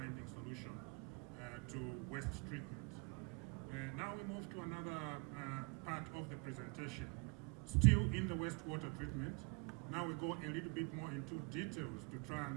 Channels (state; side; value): quieter; left; 31.8 dB